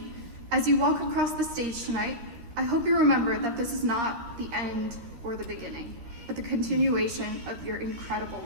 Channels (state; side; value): late; left; 13 ms